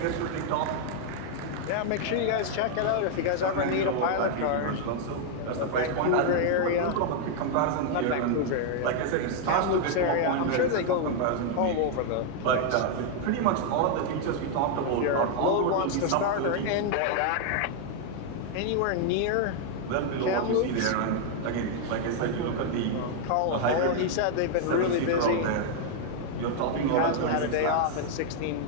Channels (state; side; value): different; both; correlation 0.00